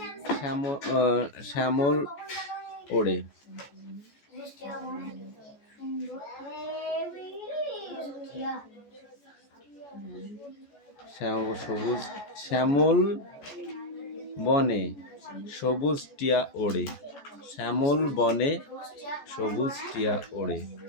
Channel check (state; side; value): late; right; 14 ms